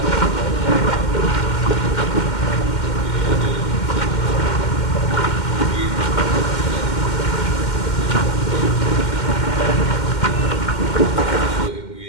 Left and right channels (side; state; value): right; late; 2.1 ms